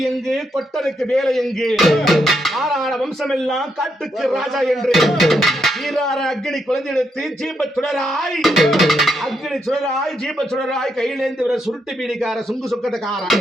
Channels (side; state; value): both; normal; correlation 0.79